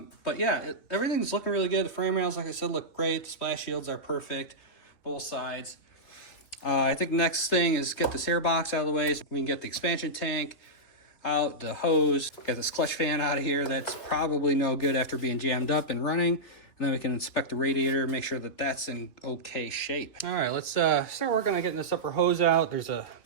yeah, everything's looking really good. The frame rails, like I said, look great. The splash shields are perfect, both sides. I think the next thing is get this air box out of the way so we can get the expansion tank out, the hose, get this clutch fan out of here. That's probably no good after being jammed up and running. And then we can inspect the radiator, make sure that that's in okay shape. All right, let's start working on getting this upper hose out. There's a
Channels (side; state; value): right; late; 3.2 ms